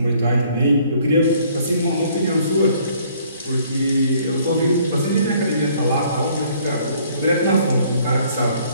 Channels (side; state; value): both; inverted; correlation -0.61